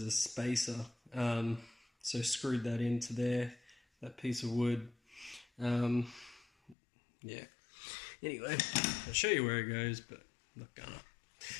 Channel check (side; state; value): right; drops out; at 6.8 s